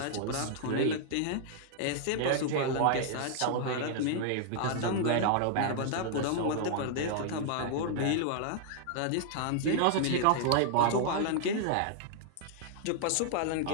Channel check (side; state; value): both; different; correlation -0.01